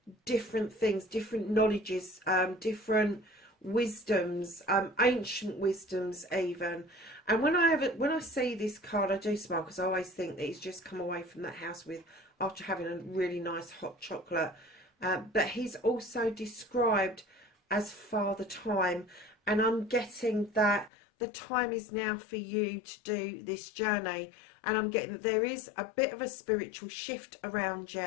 different things, different knowledges, different wisdoms, ancient wisdoms even. And when I see this card, I do smile, because I always think that he's just come away from that house with, after having a really nice hot chocolate. But he's also described as Father Time, and I'm getting that the time is now for you to do this journey. And I'm getting that there is a bit of a spiritual shift around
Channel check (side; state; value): right; drops out; at 20.9 s